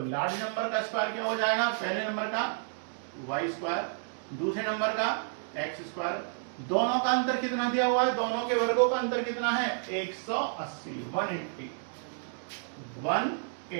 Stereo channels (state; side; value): silent; left; digital silence